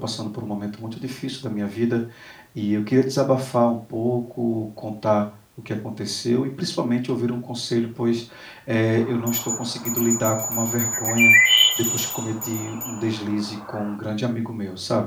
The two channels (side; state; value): both; identical; correlation 1.00